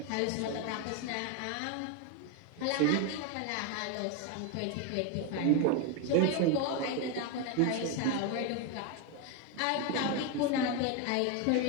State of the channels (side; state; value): both; different; correlation 0.02